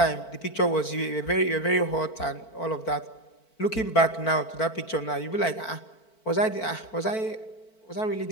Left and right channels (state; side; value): late; right; 4.5 ms